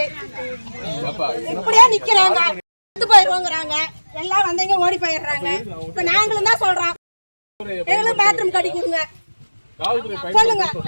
இப்படியே நிக்கிறாங்க. போயிருவாங்க. எல்லாம் வந்தவங்க ஓடி போயிடுறாங்க. இப்ப நாங்களும் தான் சொல்றோம், எங்களும் பாத்ரூம் கட்டி கொடுங்க சொல்லுங்க.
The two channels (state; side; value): inverted; both; correlation -1.00